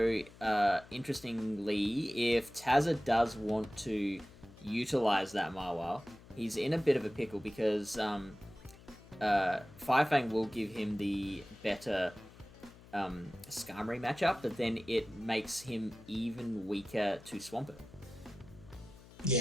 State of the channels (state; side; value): noise; left; hum, 21 dB below the sound